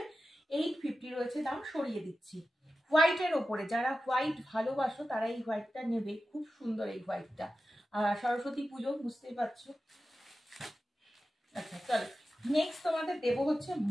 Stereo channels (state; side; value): normal; both; correlation 0.93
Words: 850 রয়েছে দাম, সরিয়ে দিচ্ছি। হোয়াইটের ওপরে যারা হোয়াইট ভালোবাসো তারা এই হোয়াইটটা নেবে। খুব সুন্দর এই হোয়াইটটা। সরস্বতী পুজো বুঝতেই পারছো। আচ্ছা চলো, নেক্সট তোমাদের দেবো হচ্ছে